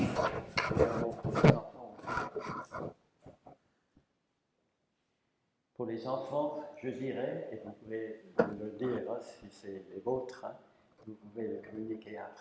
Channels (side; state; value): both; identical; correlation 1.00